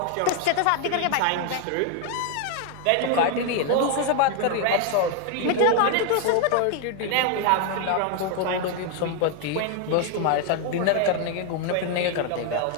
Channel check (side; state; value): both; different; correlation 0.01